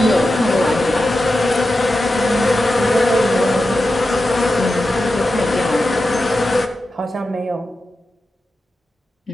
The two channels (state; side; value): normal; both; correlation 0.91